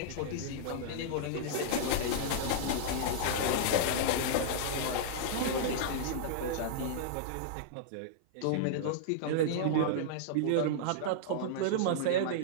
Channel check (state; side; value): different; both; correlation -0.02